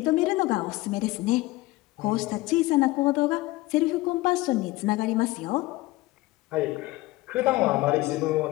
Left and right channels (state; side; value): quieter; right; 19.4 dB